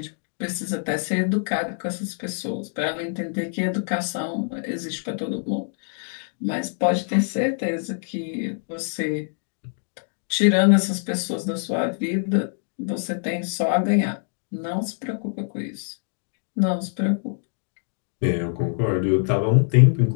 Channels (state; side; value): silent; right; digital silence